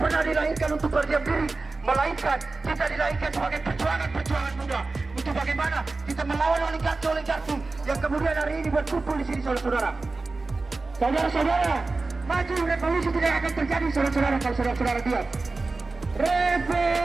pernah dilahirkan untuk berdiam diri, melainkan kita dilahirkan sebagai perjuangan muda untuk bagaimana kita melawan oligarki yang kemudian hari ini berkumpul di sini, saudara-saudara. Saudara-saudara, maju revolusi tidak akan terjadi, saudara-saudara, kalau saudara-saudara diam.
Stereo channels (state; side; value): quieter; left; 3.6 dB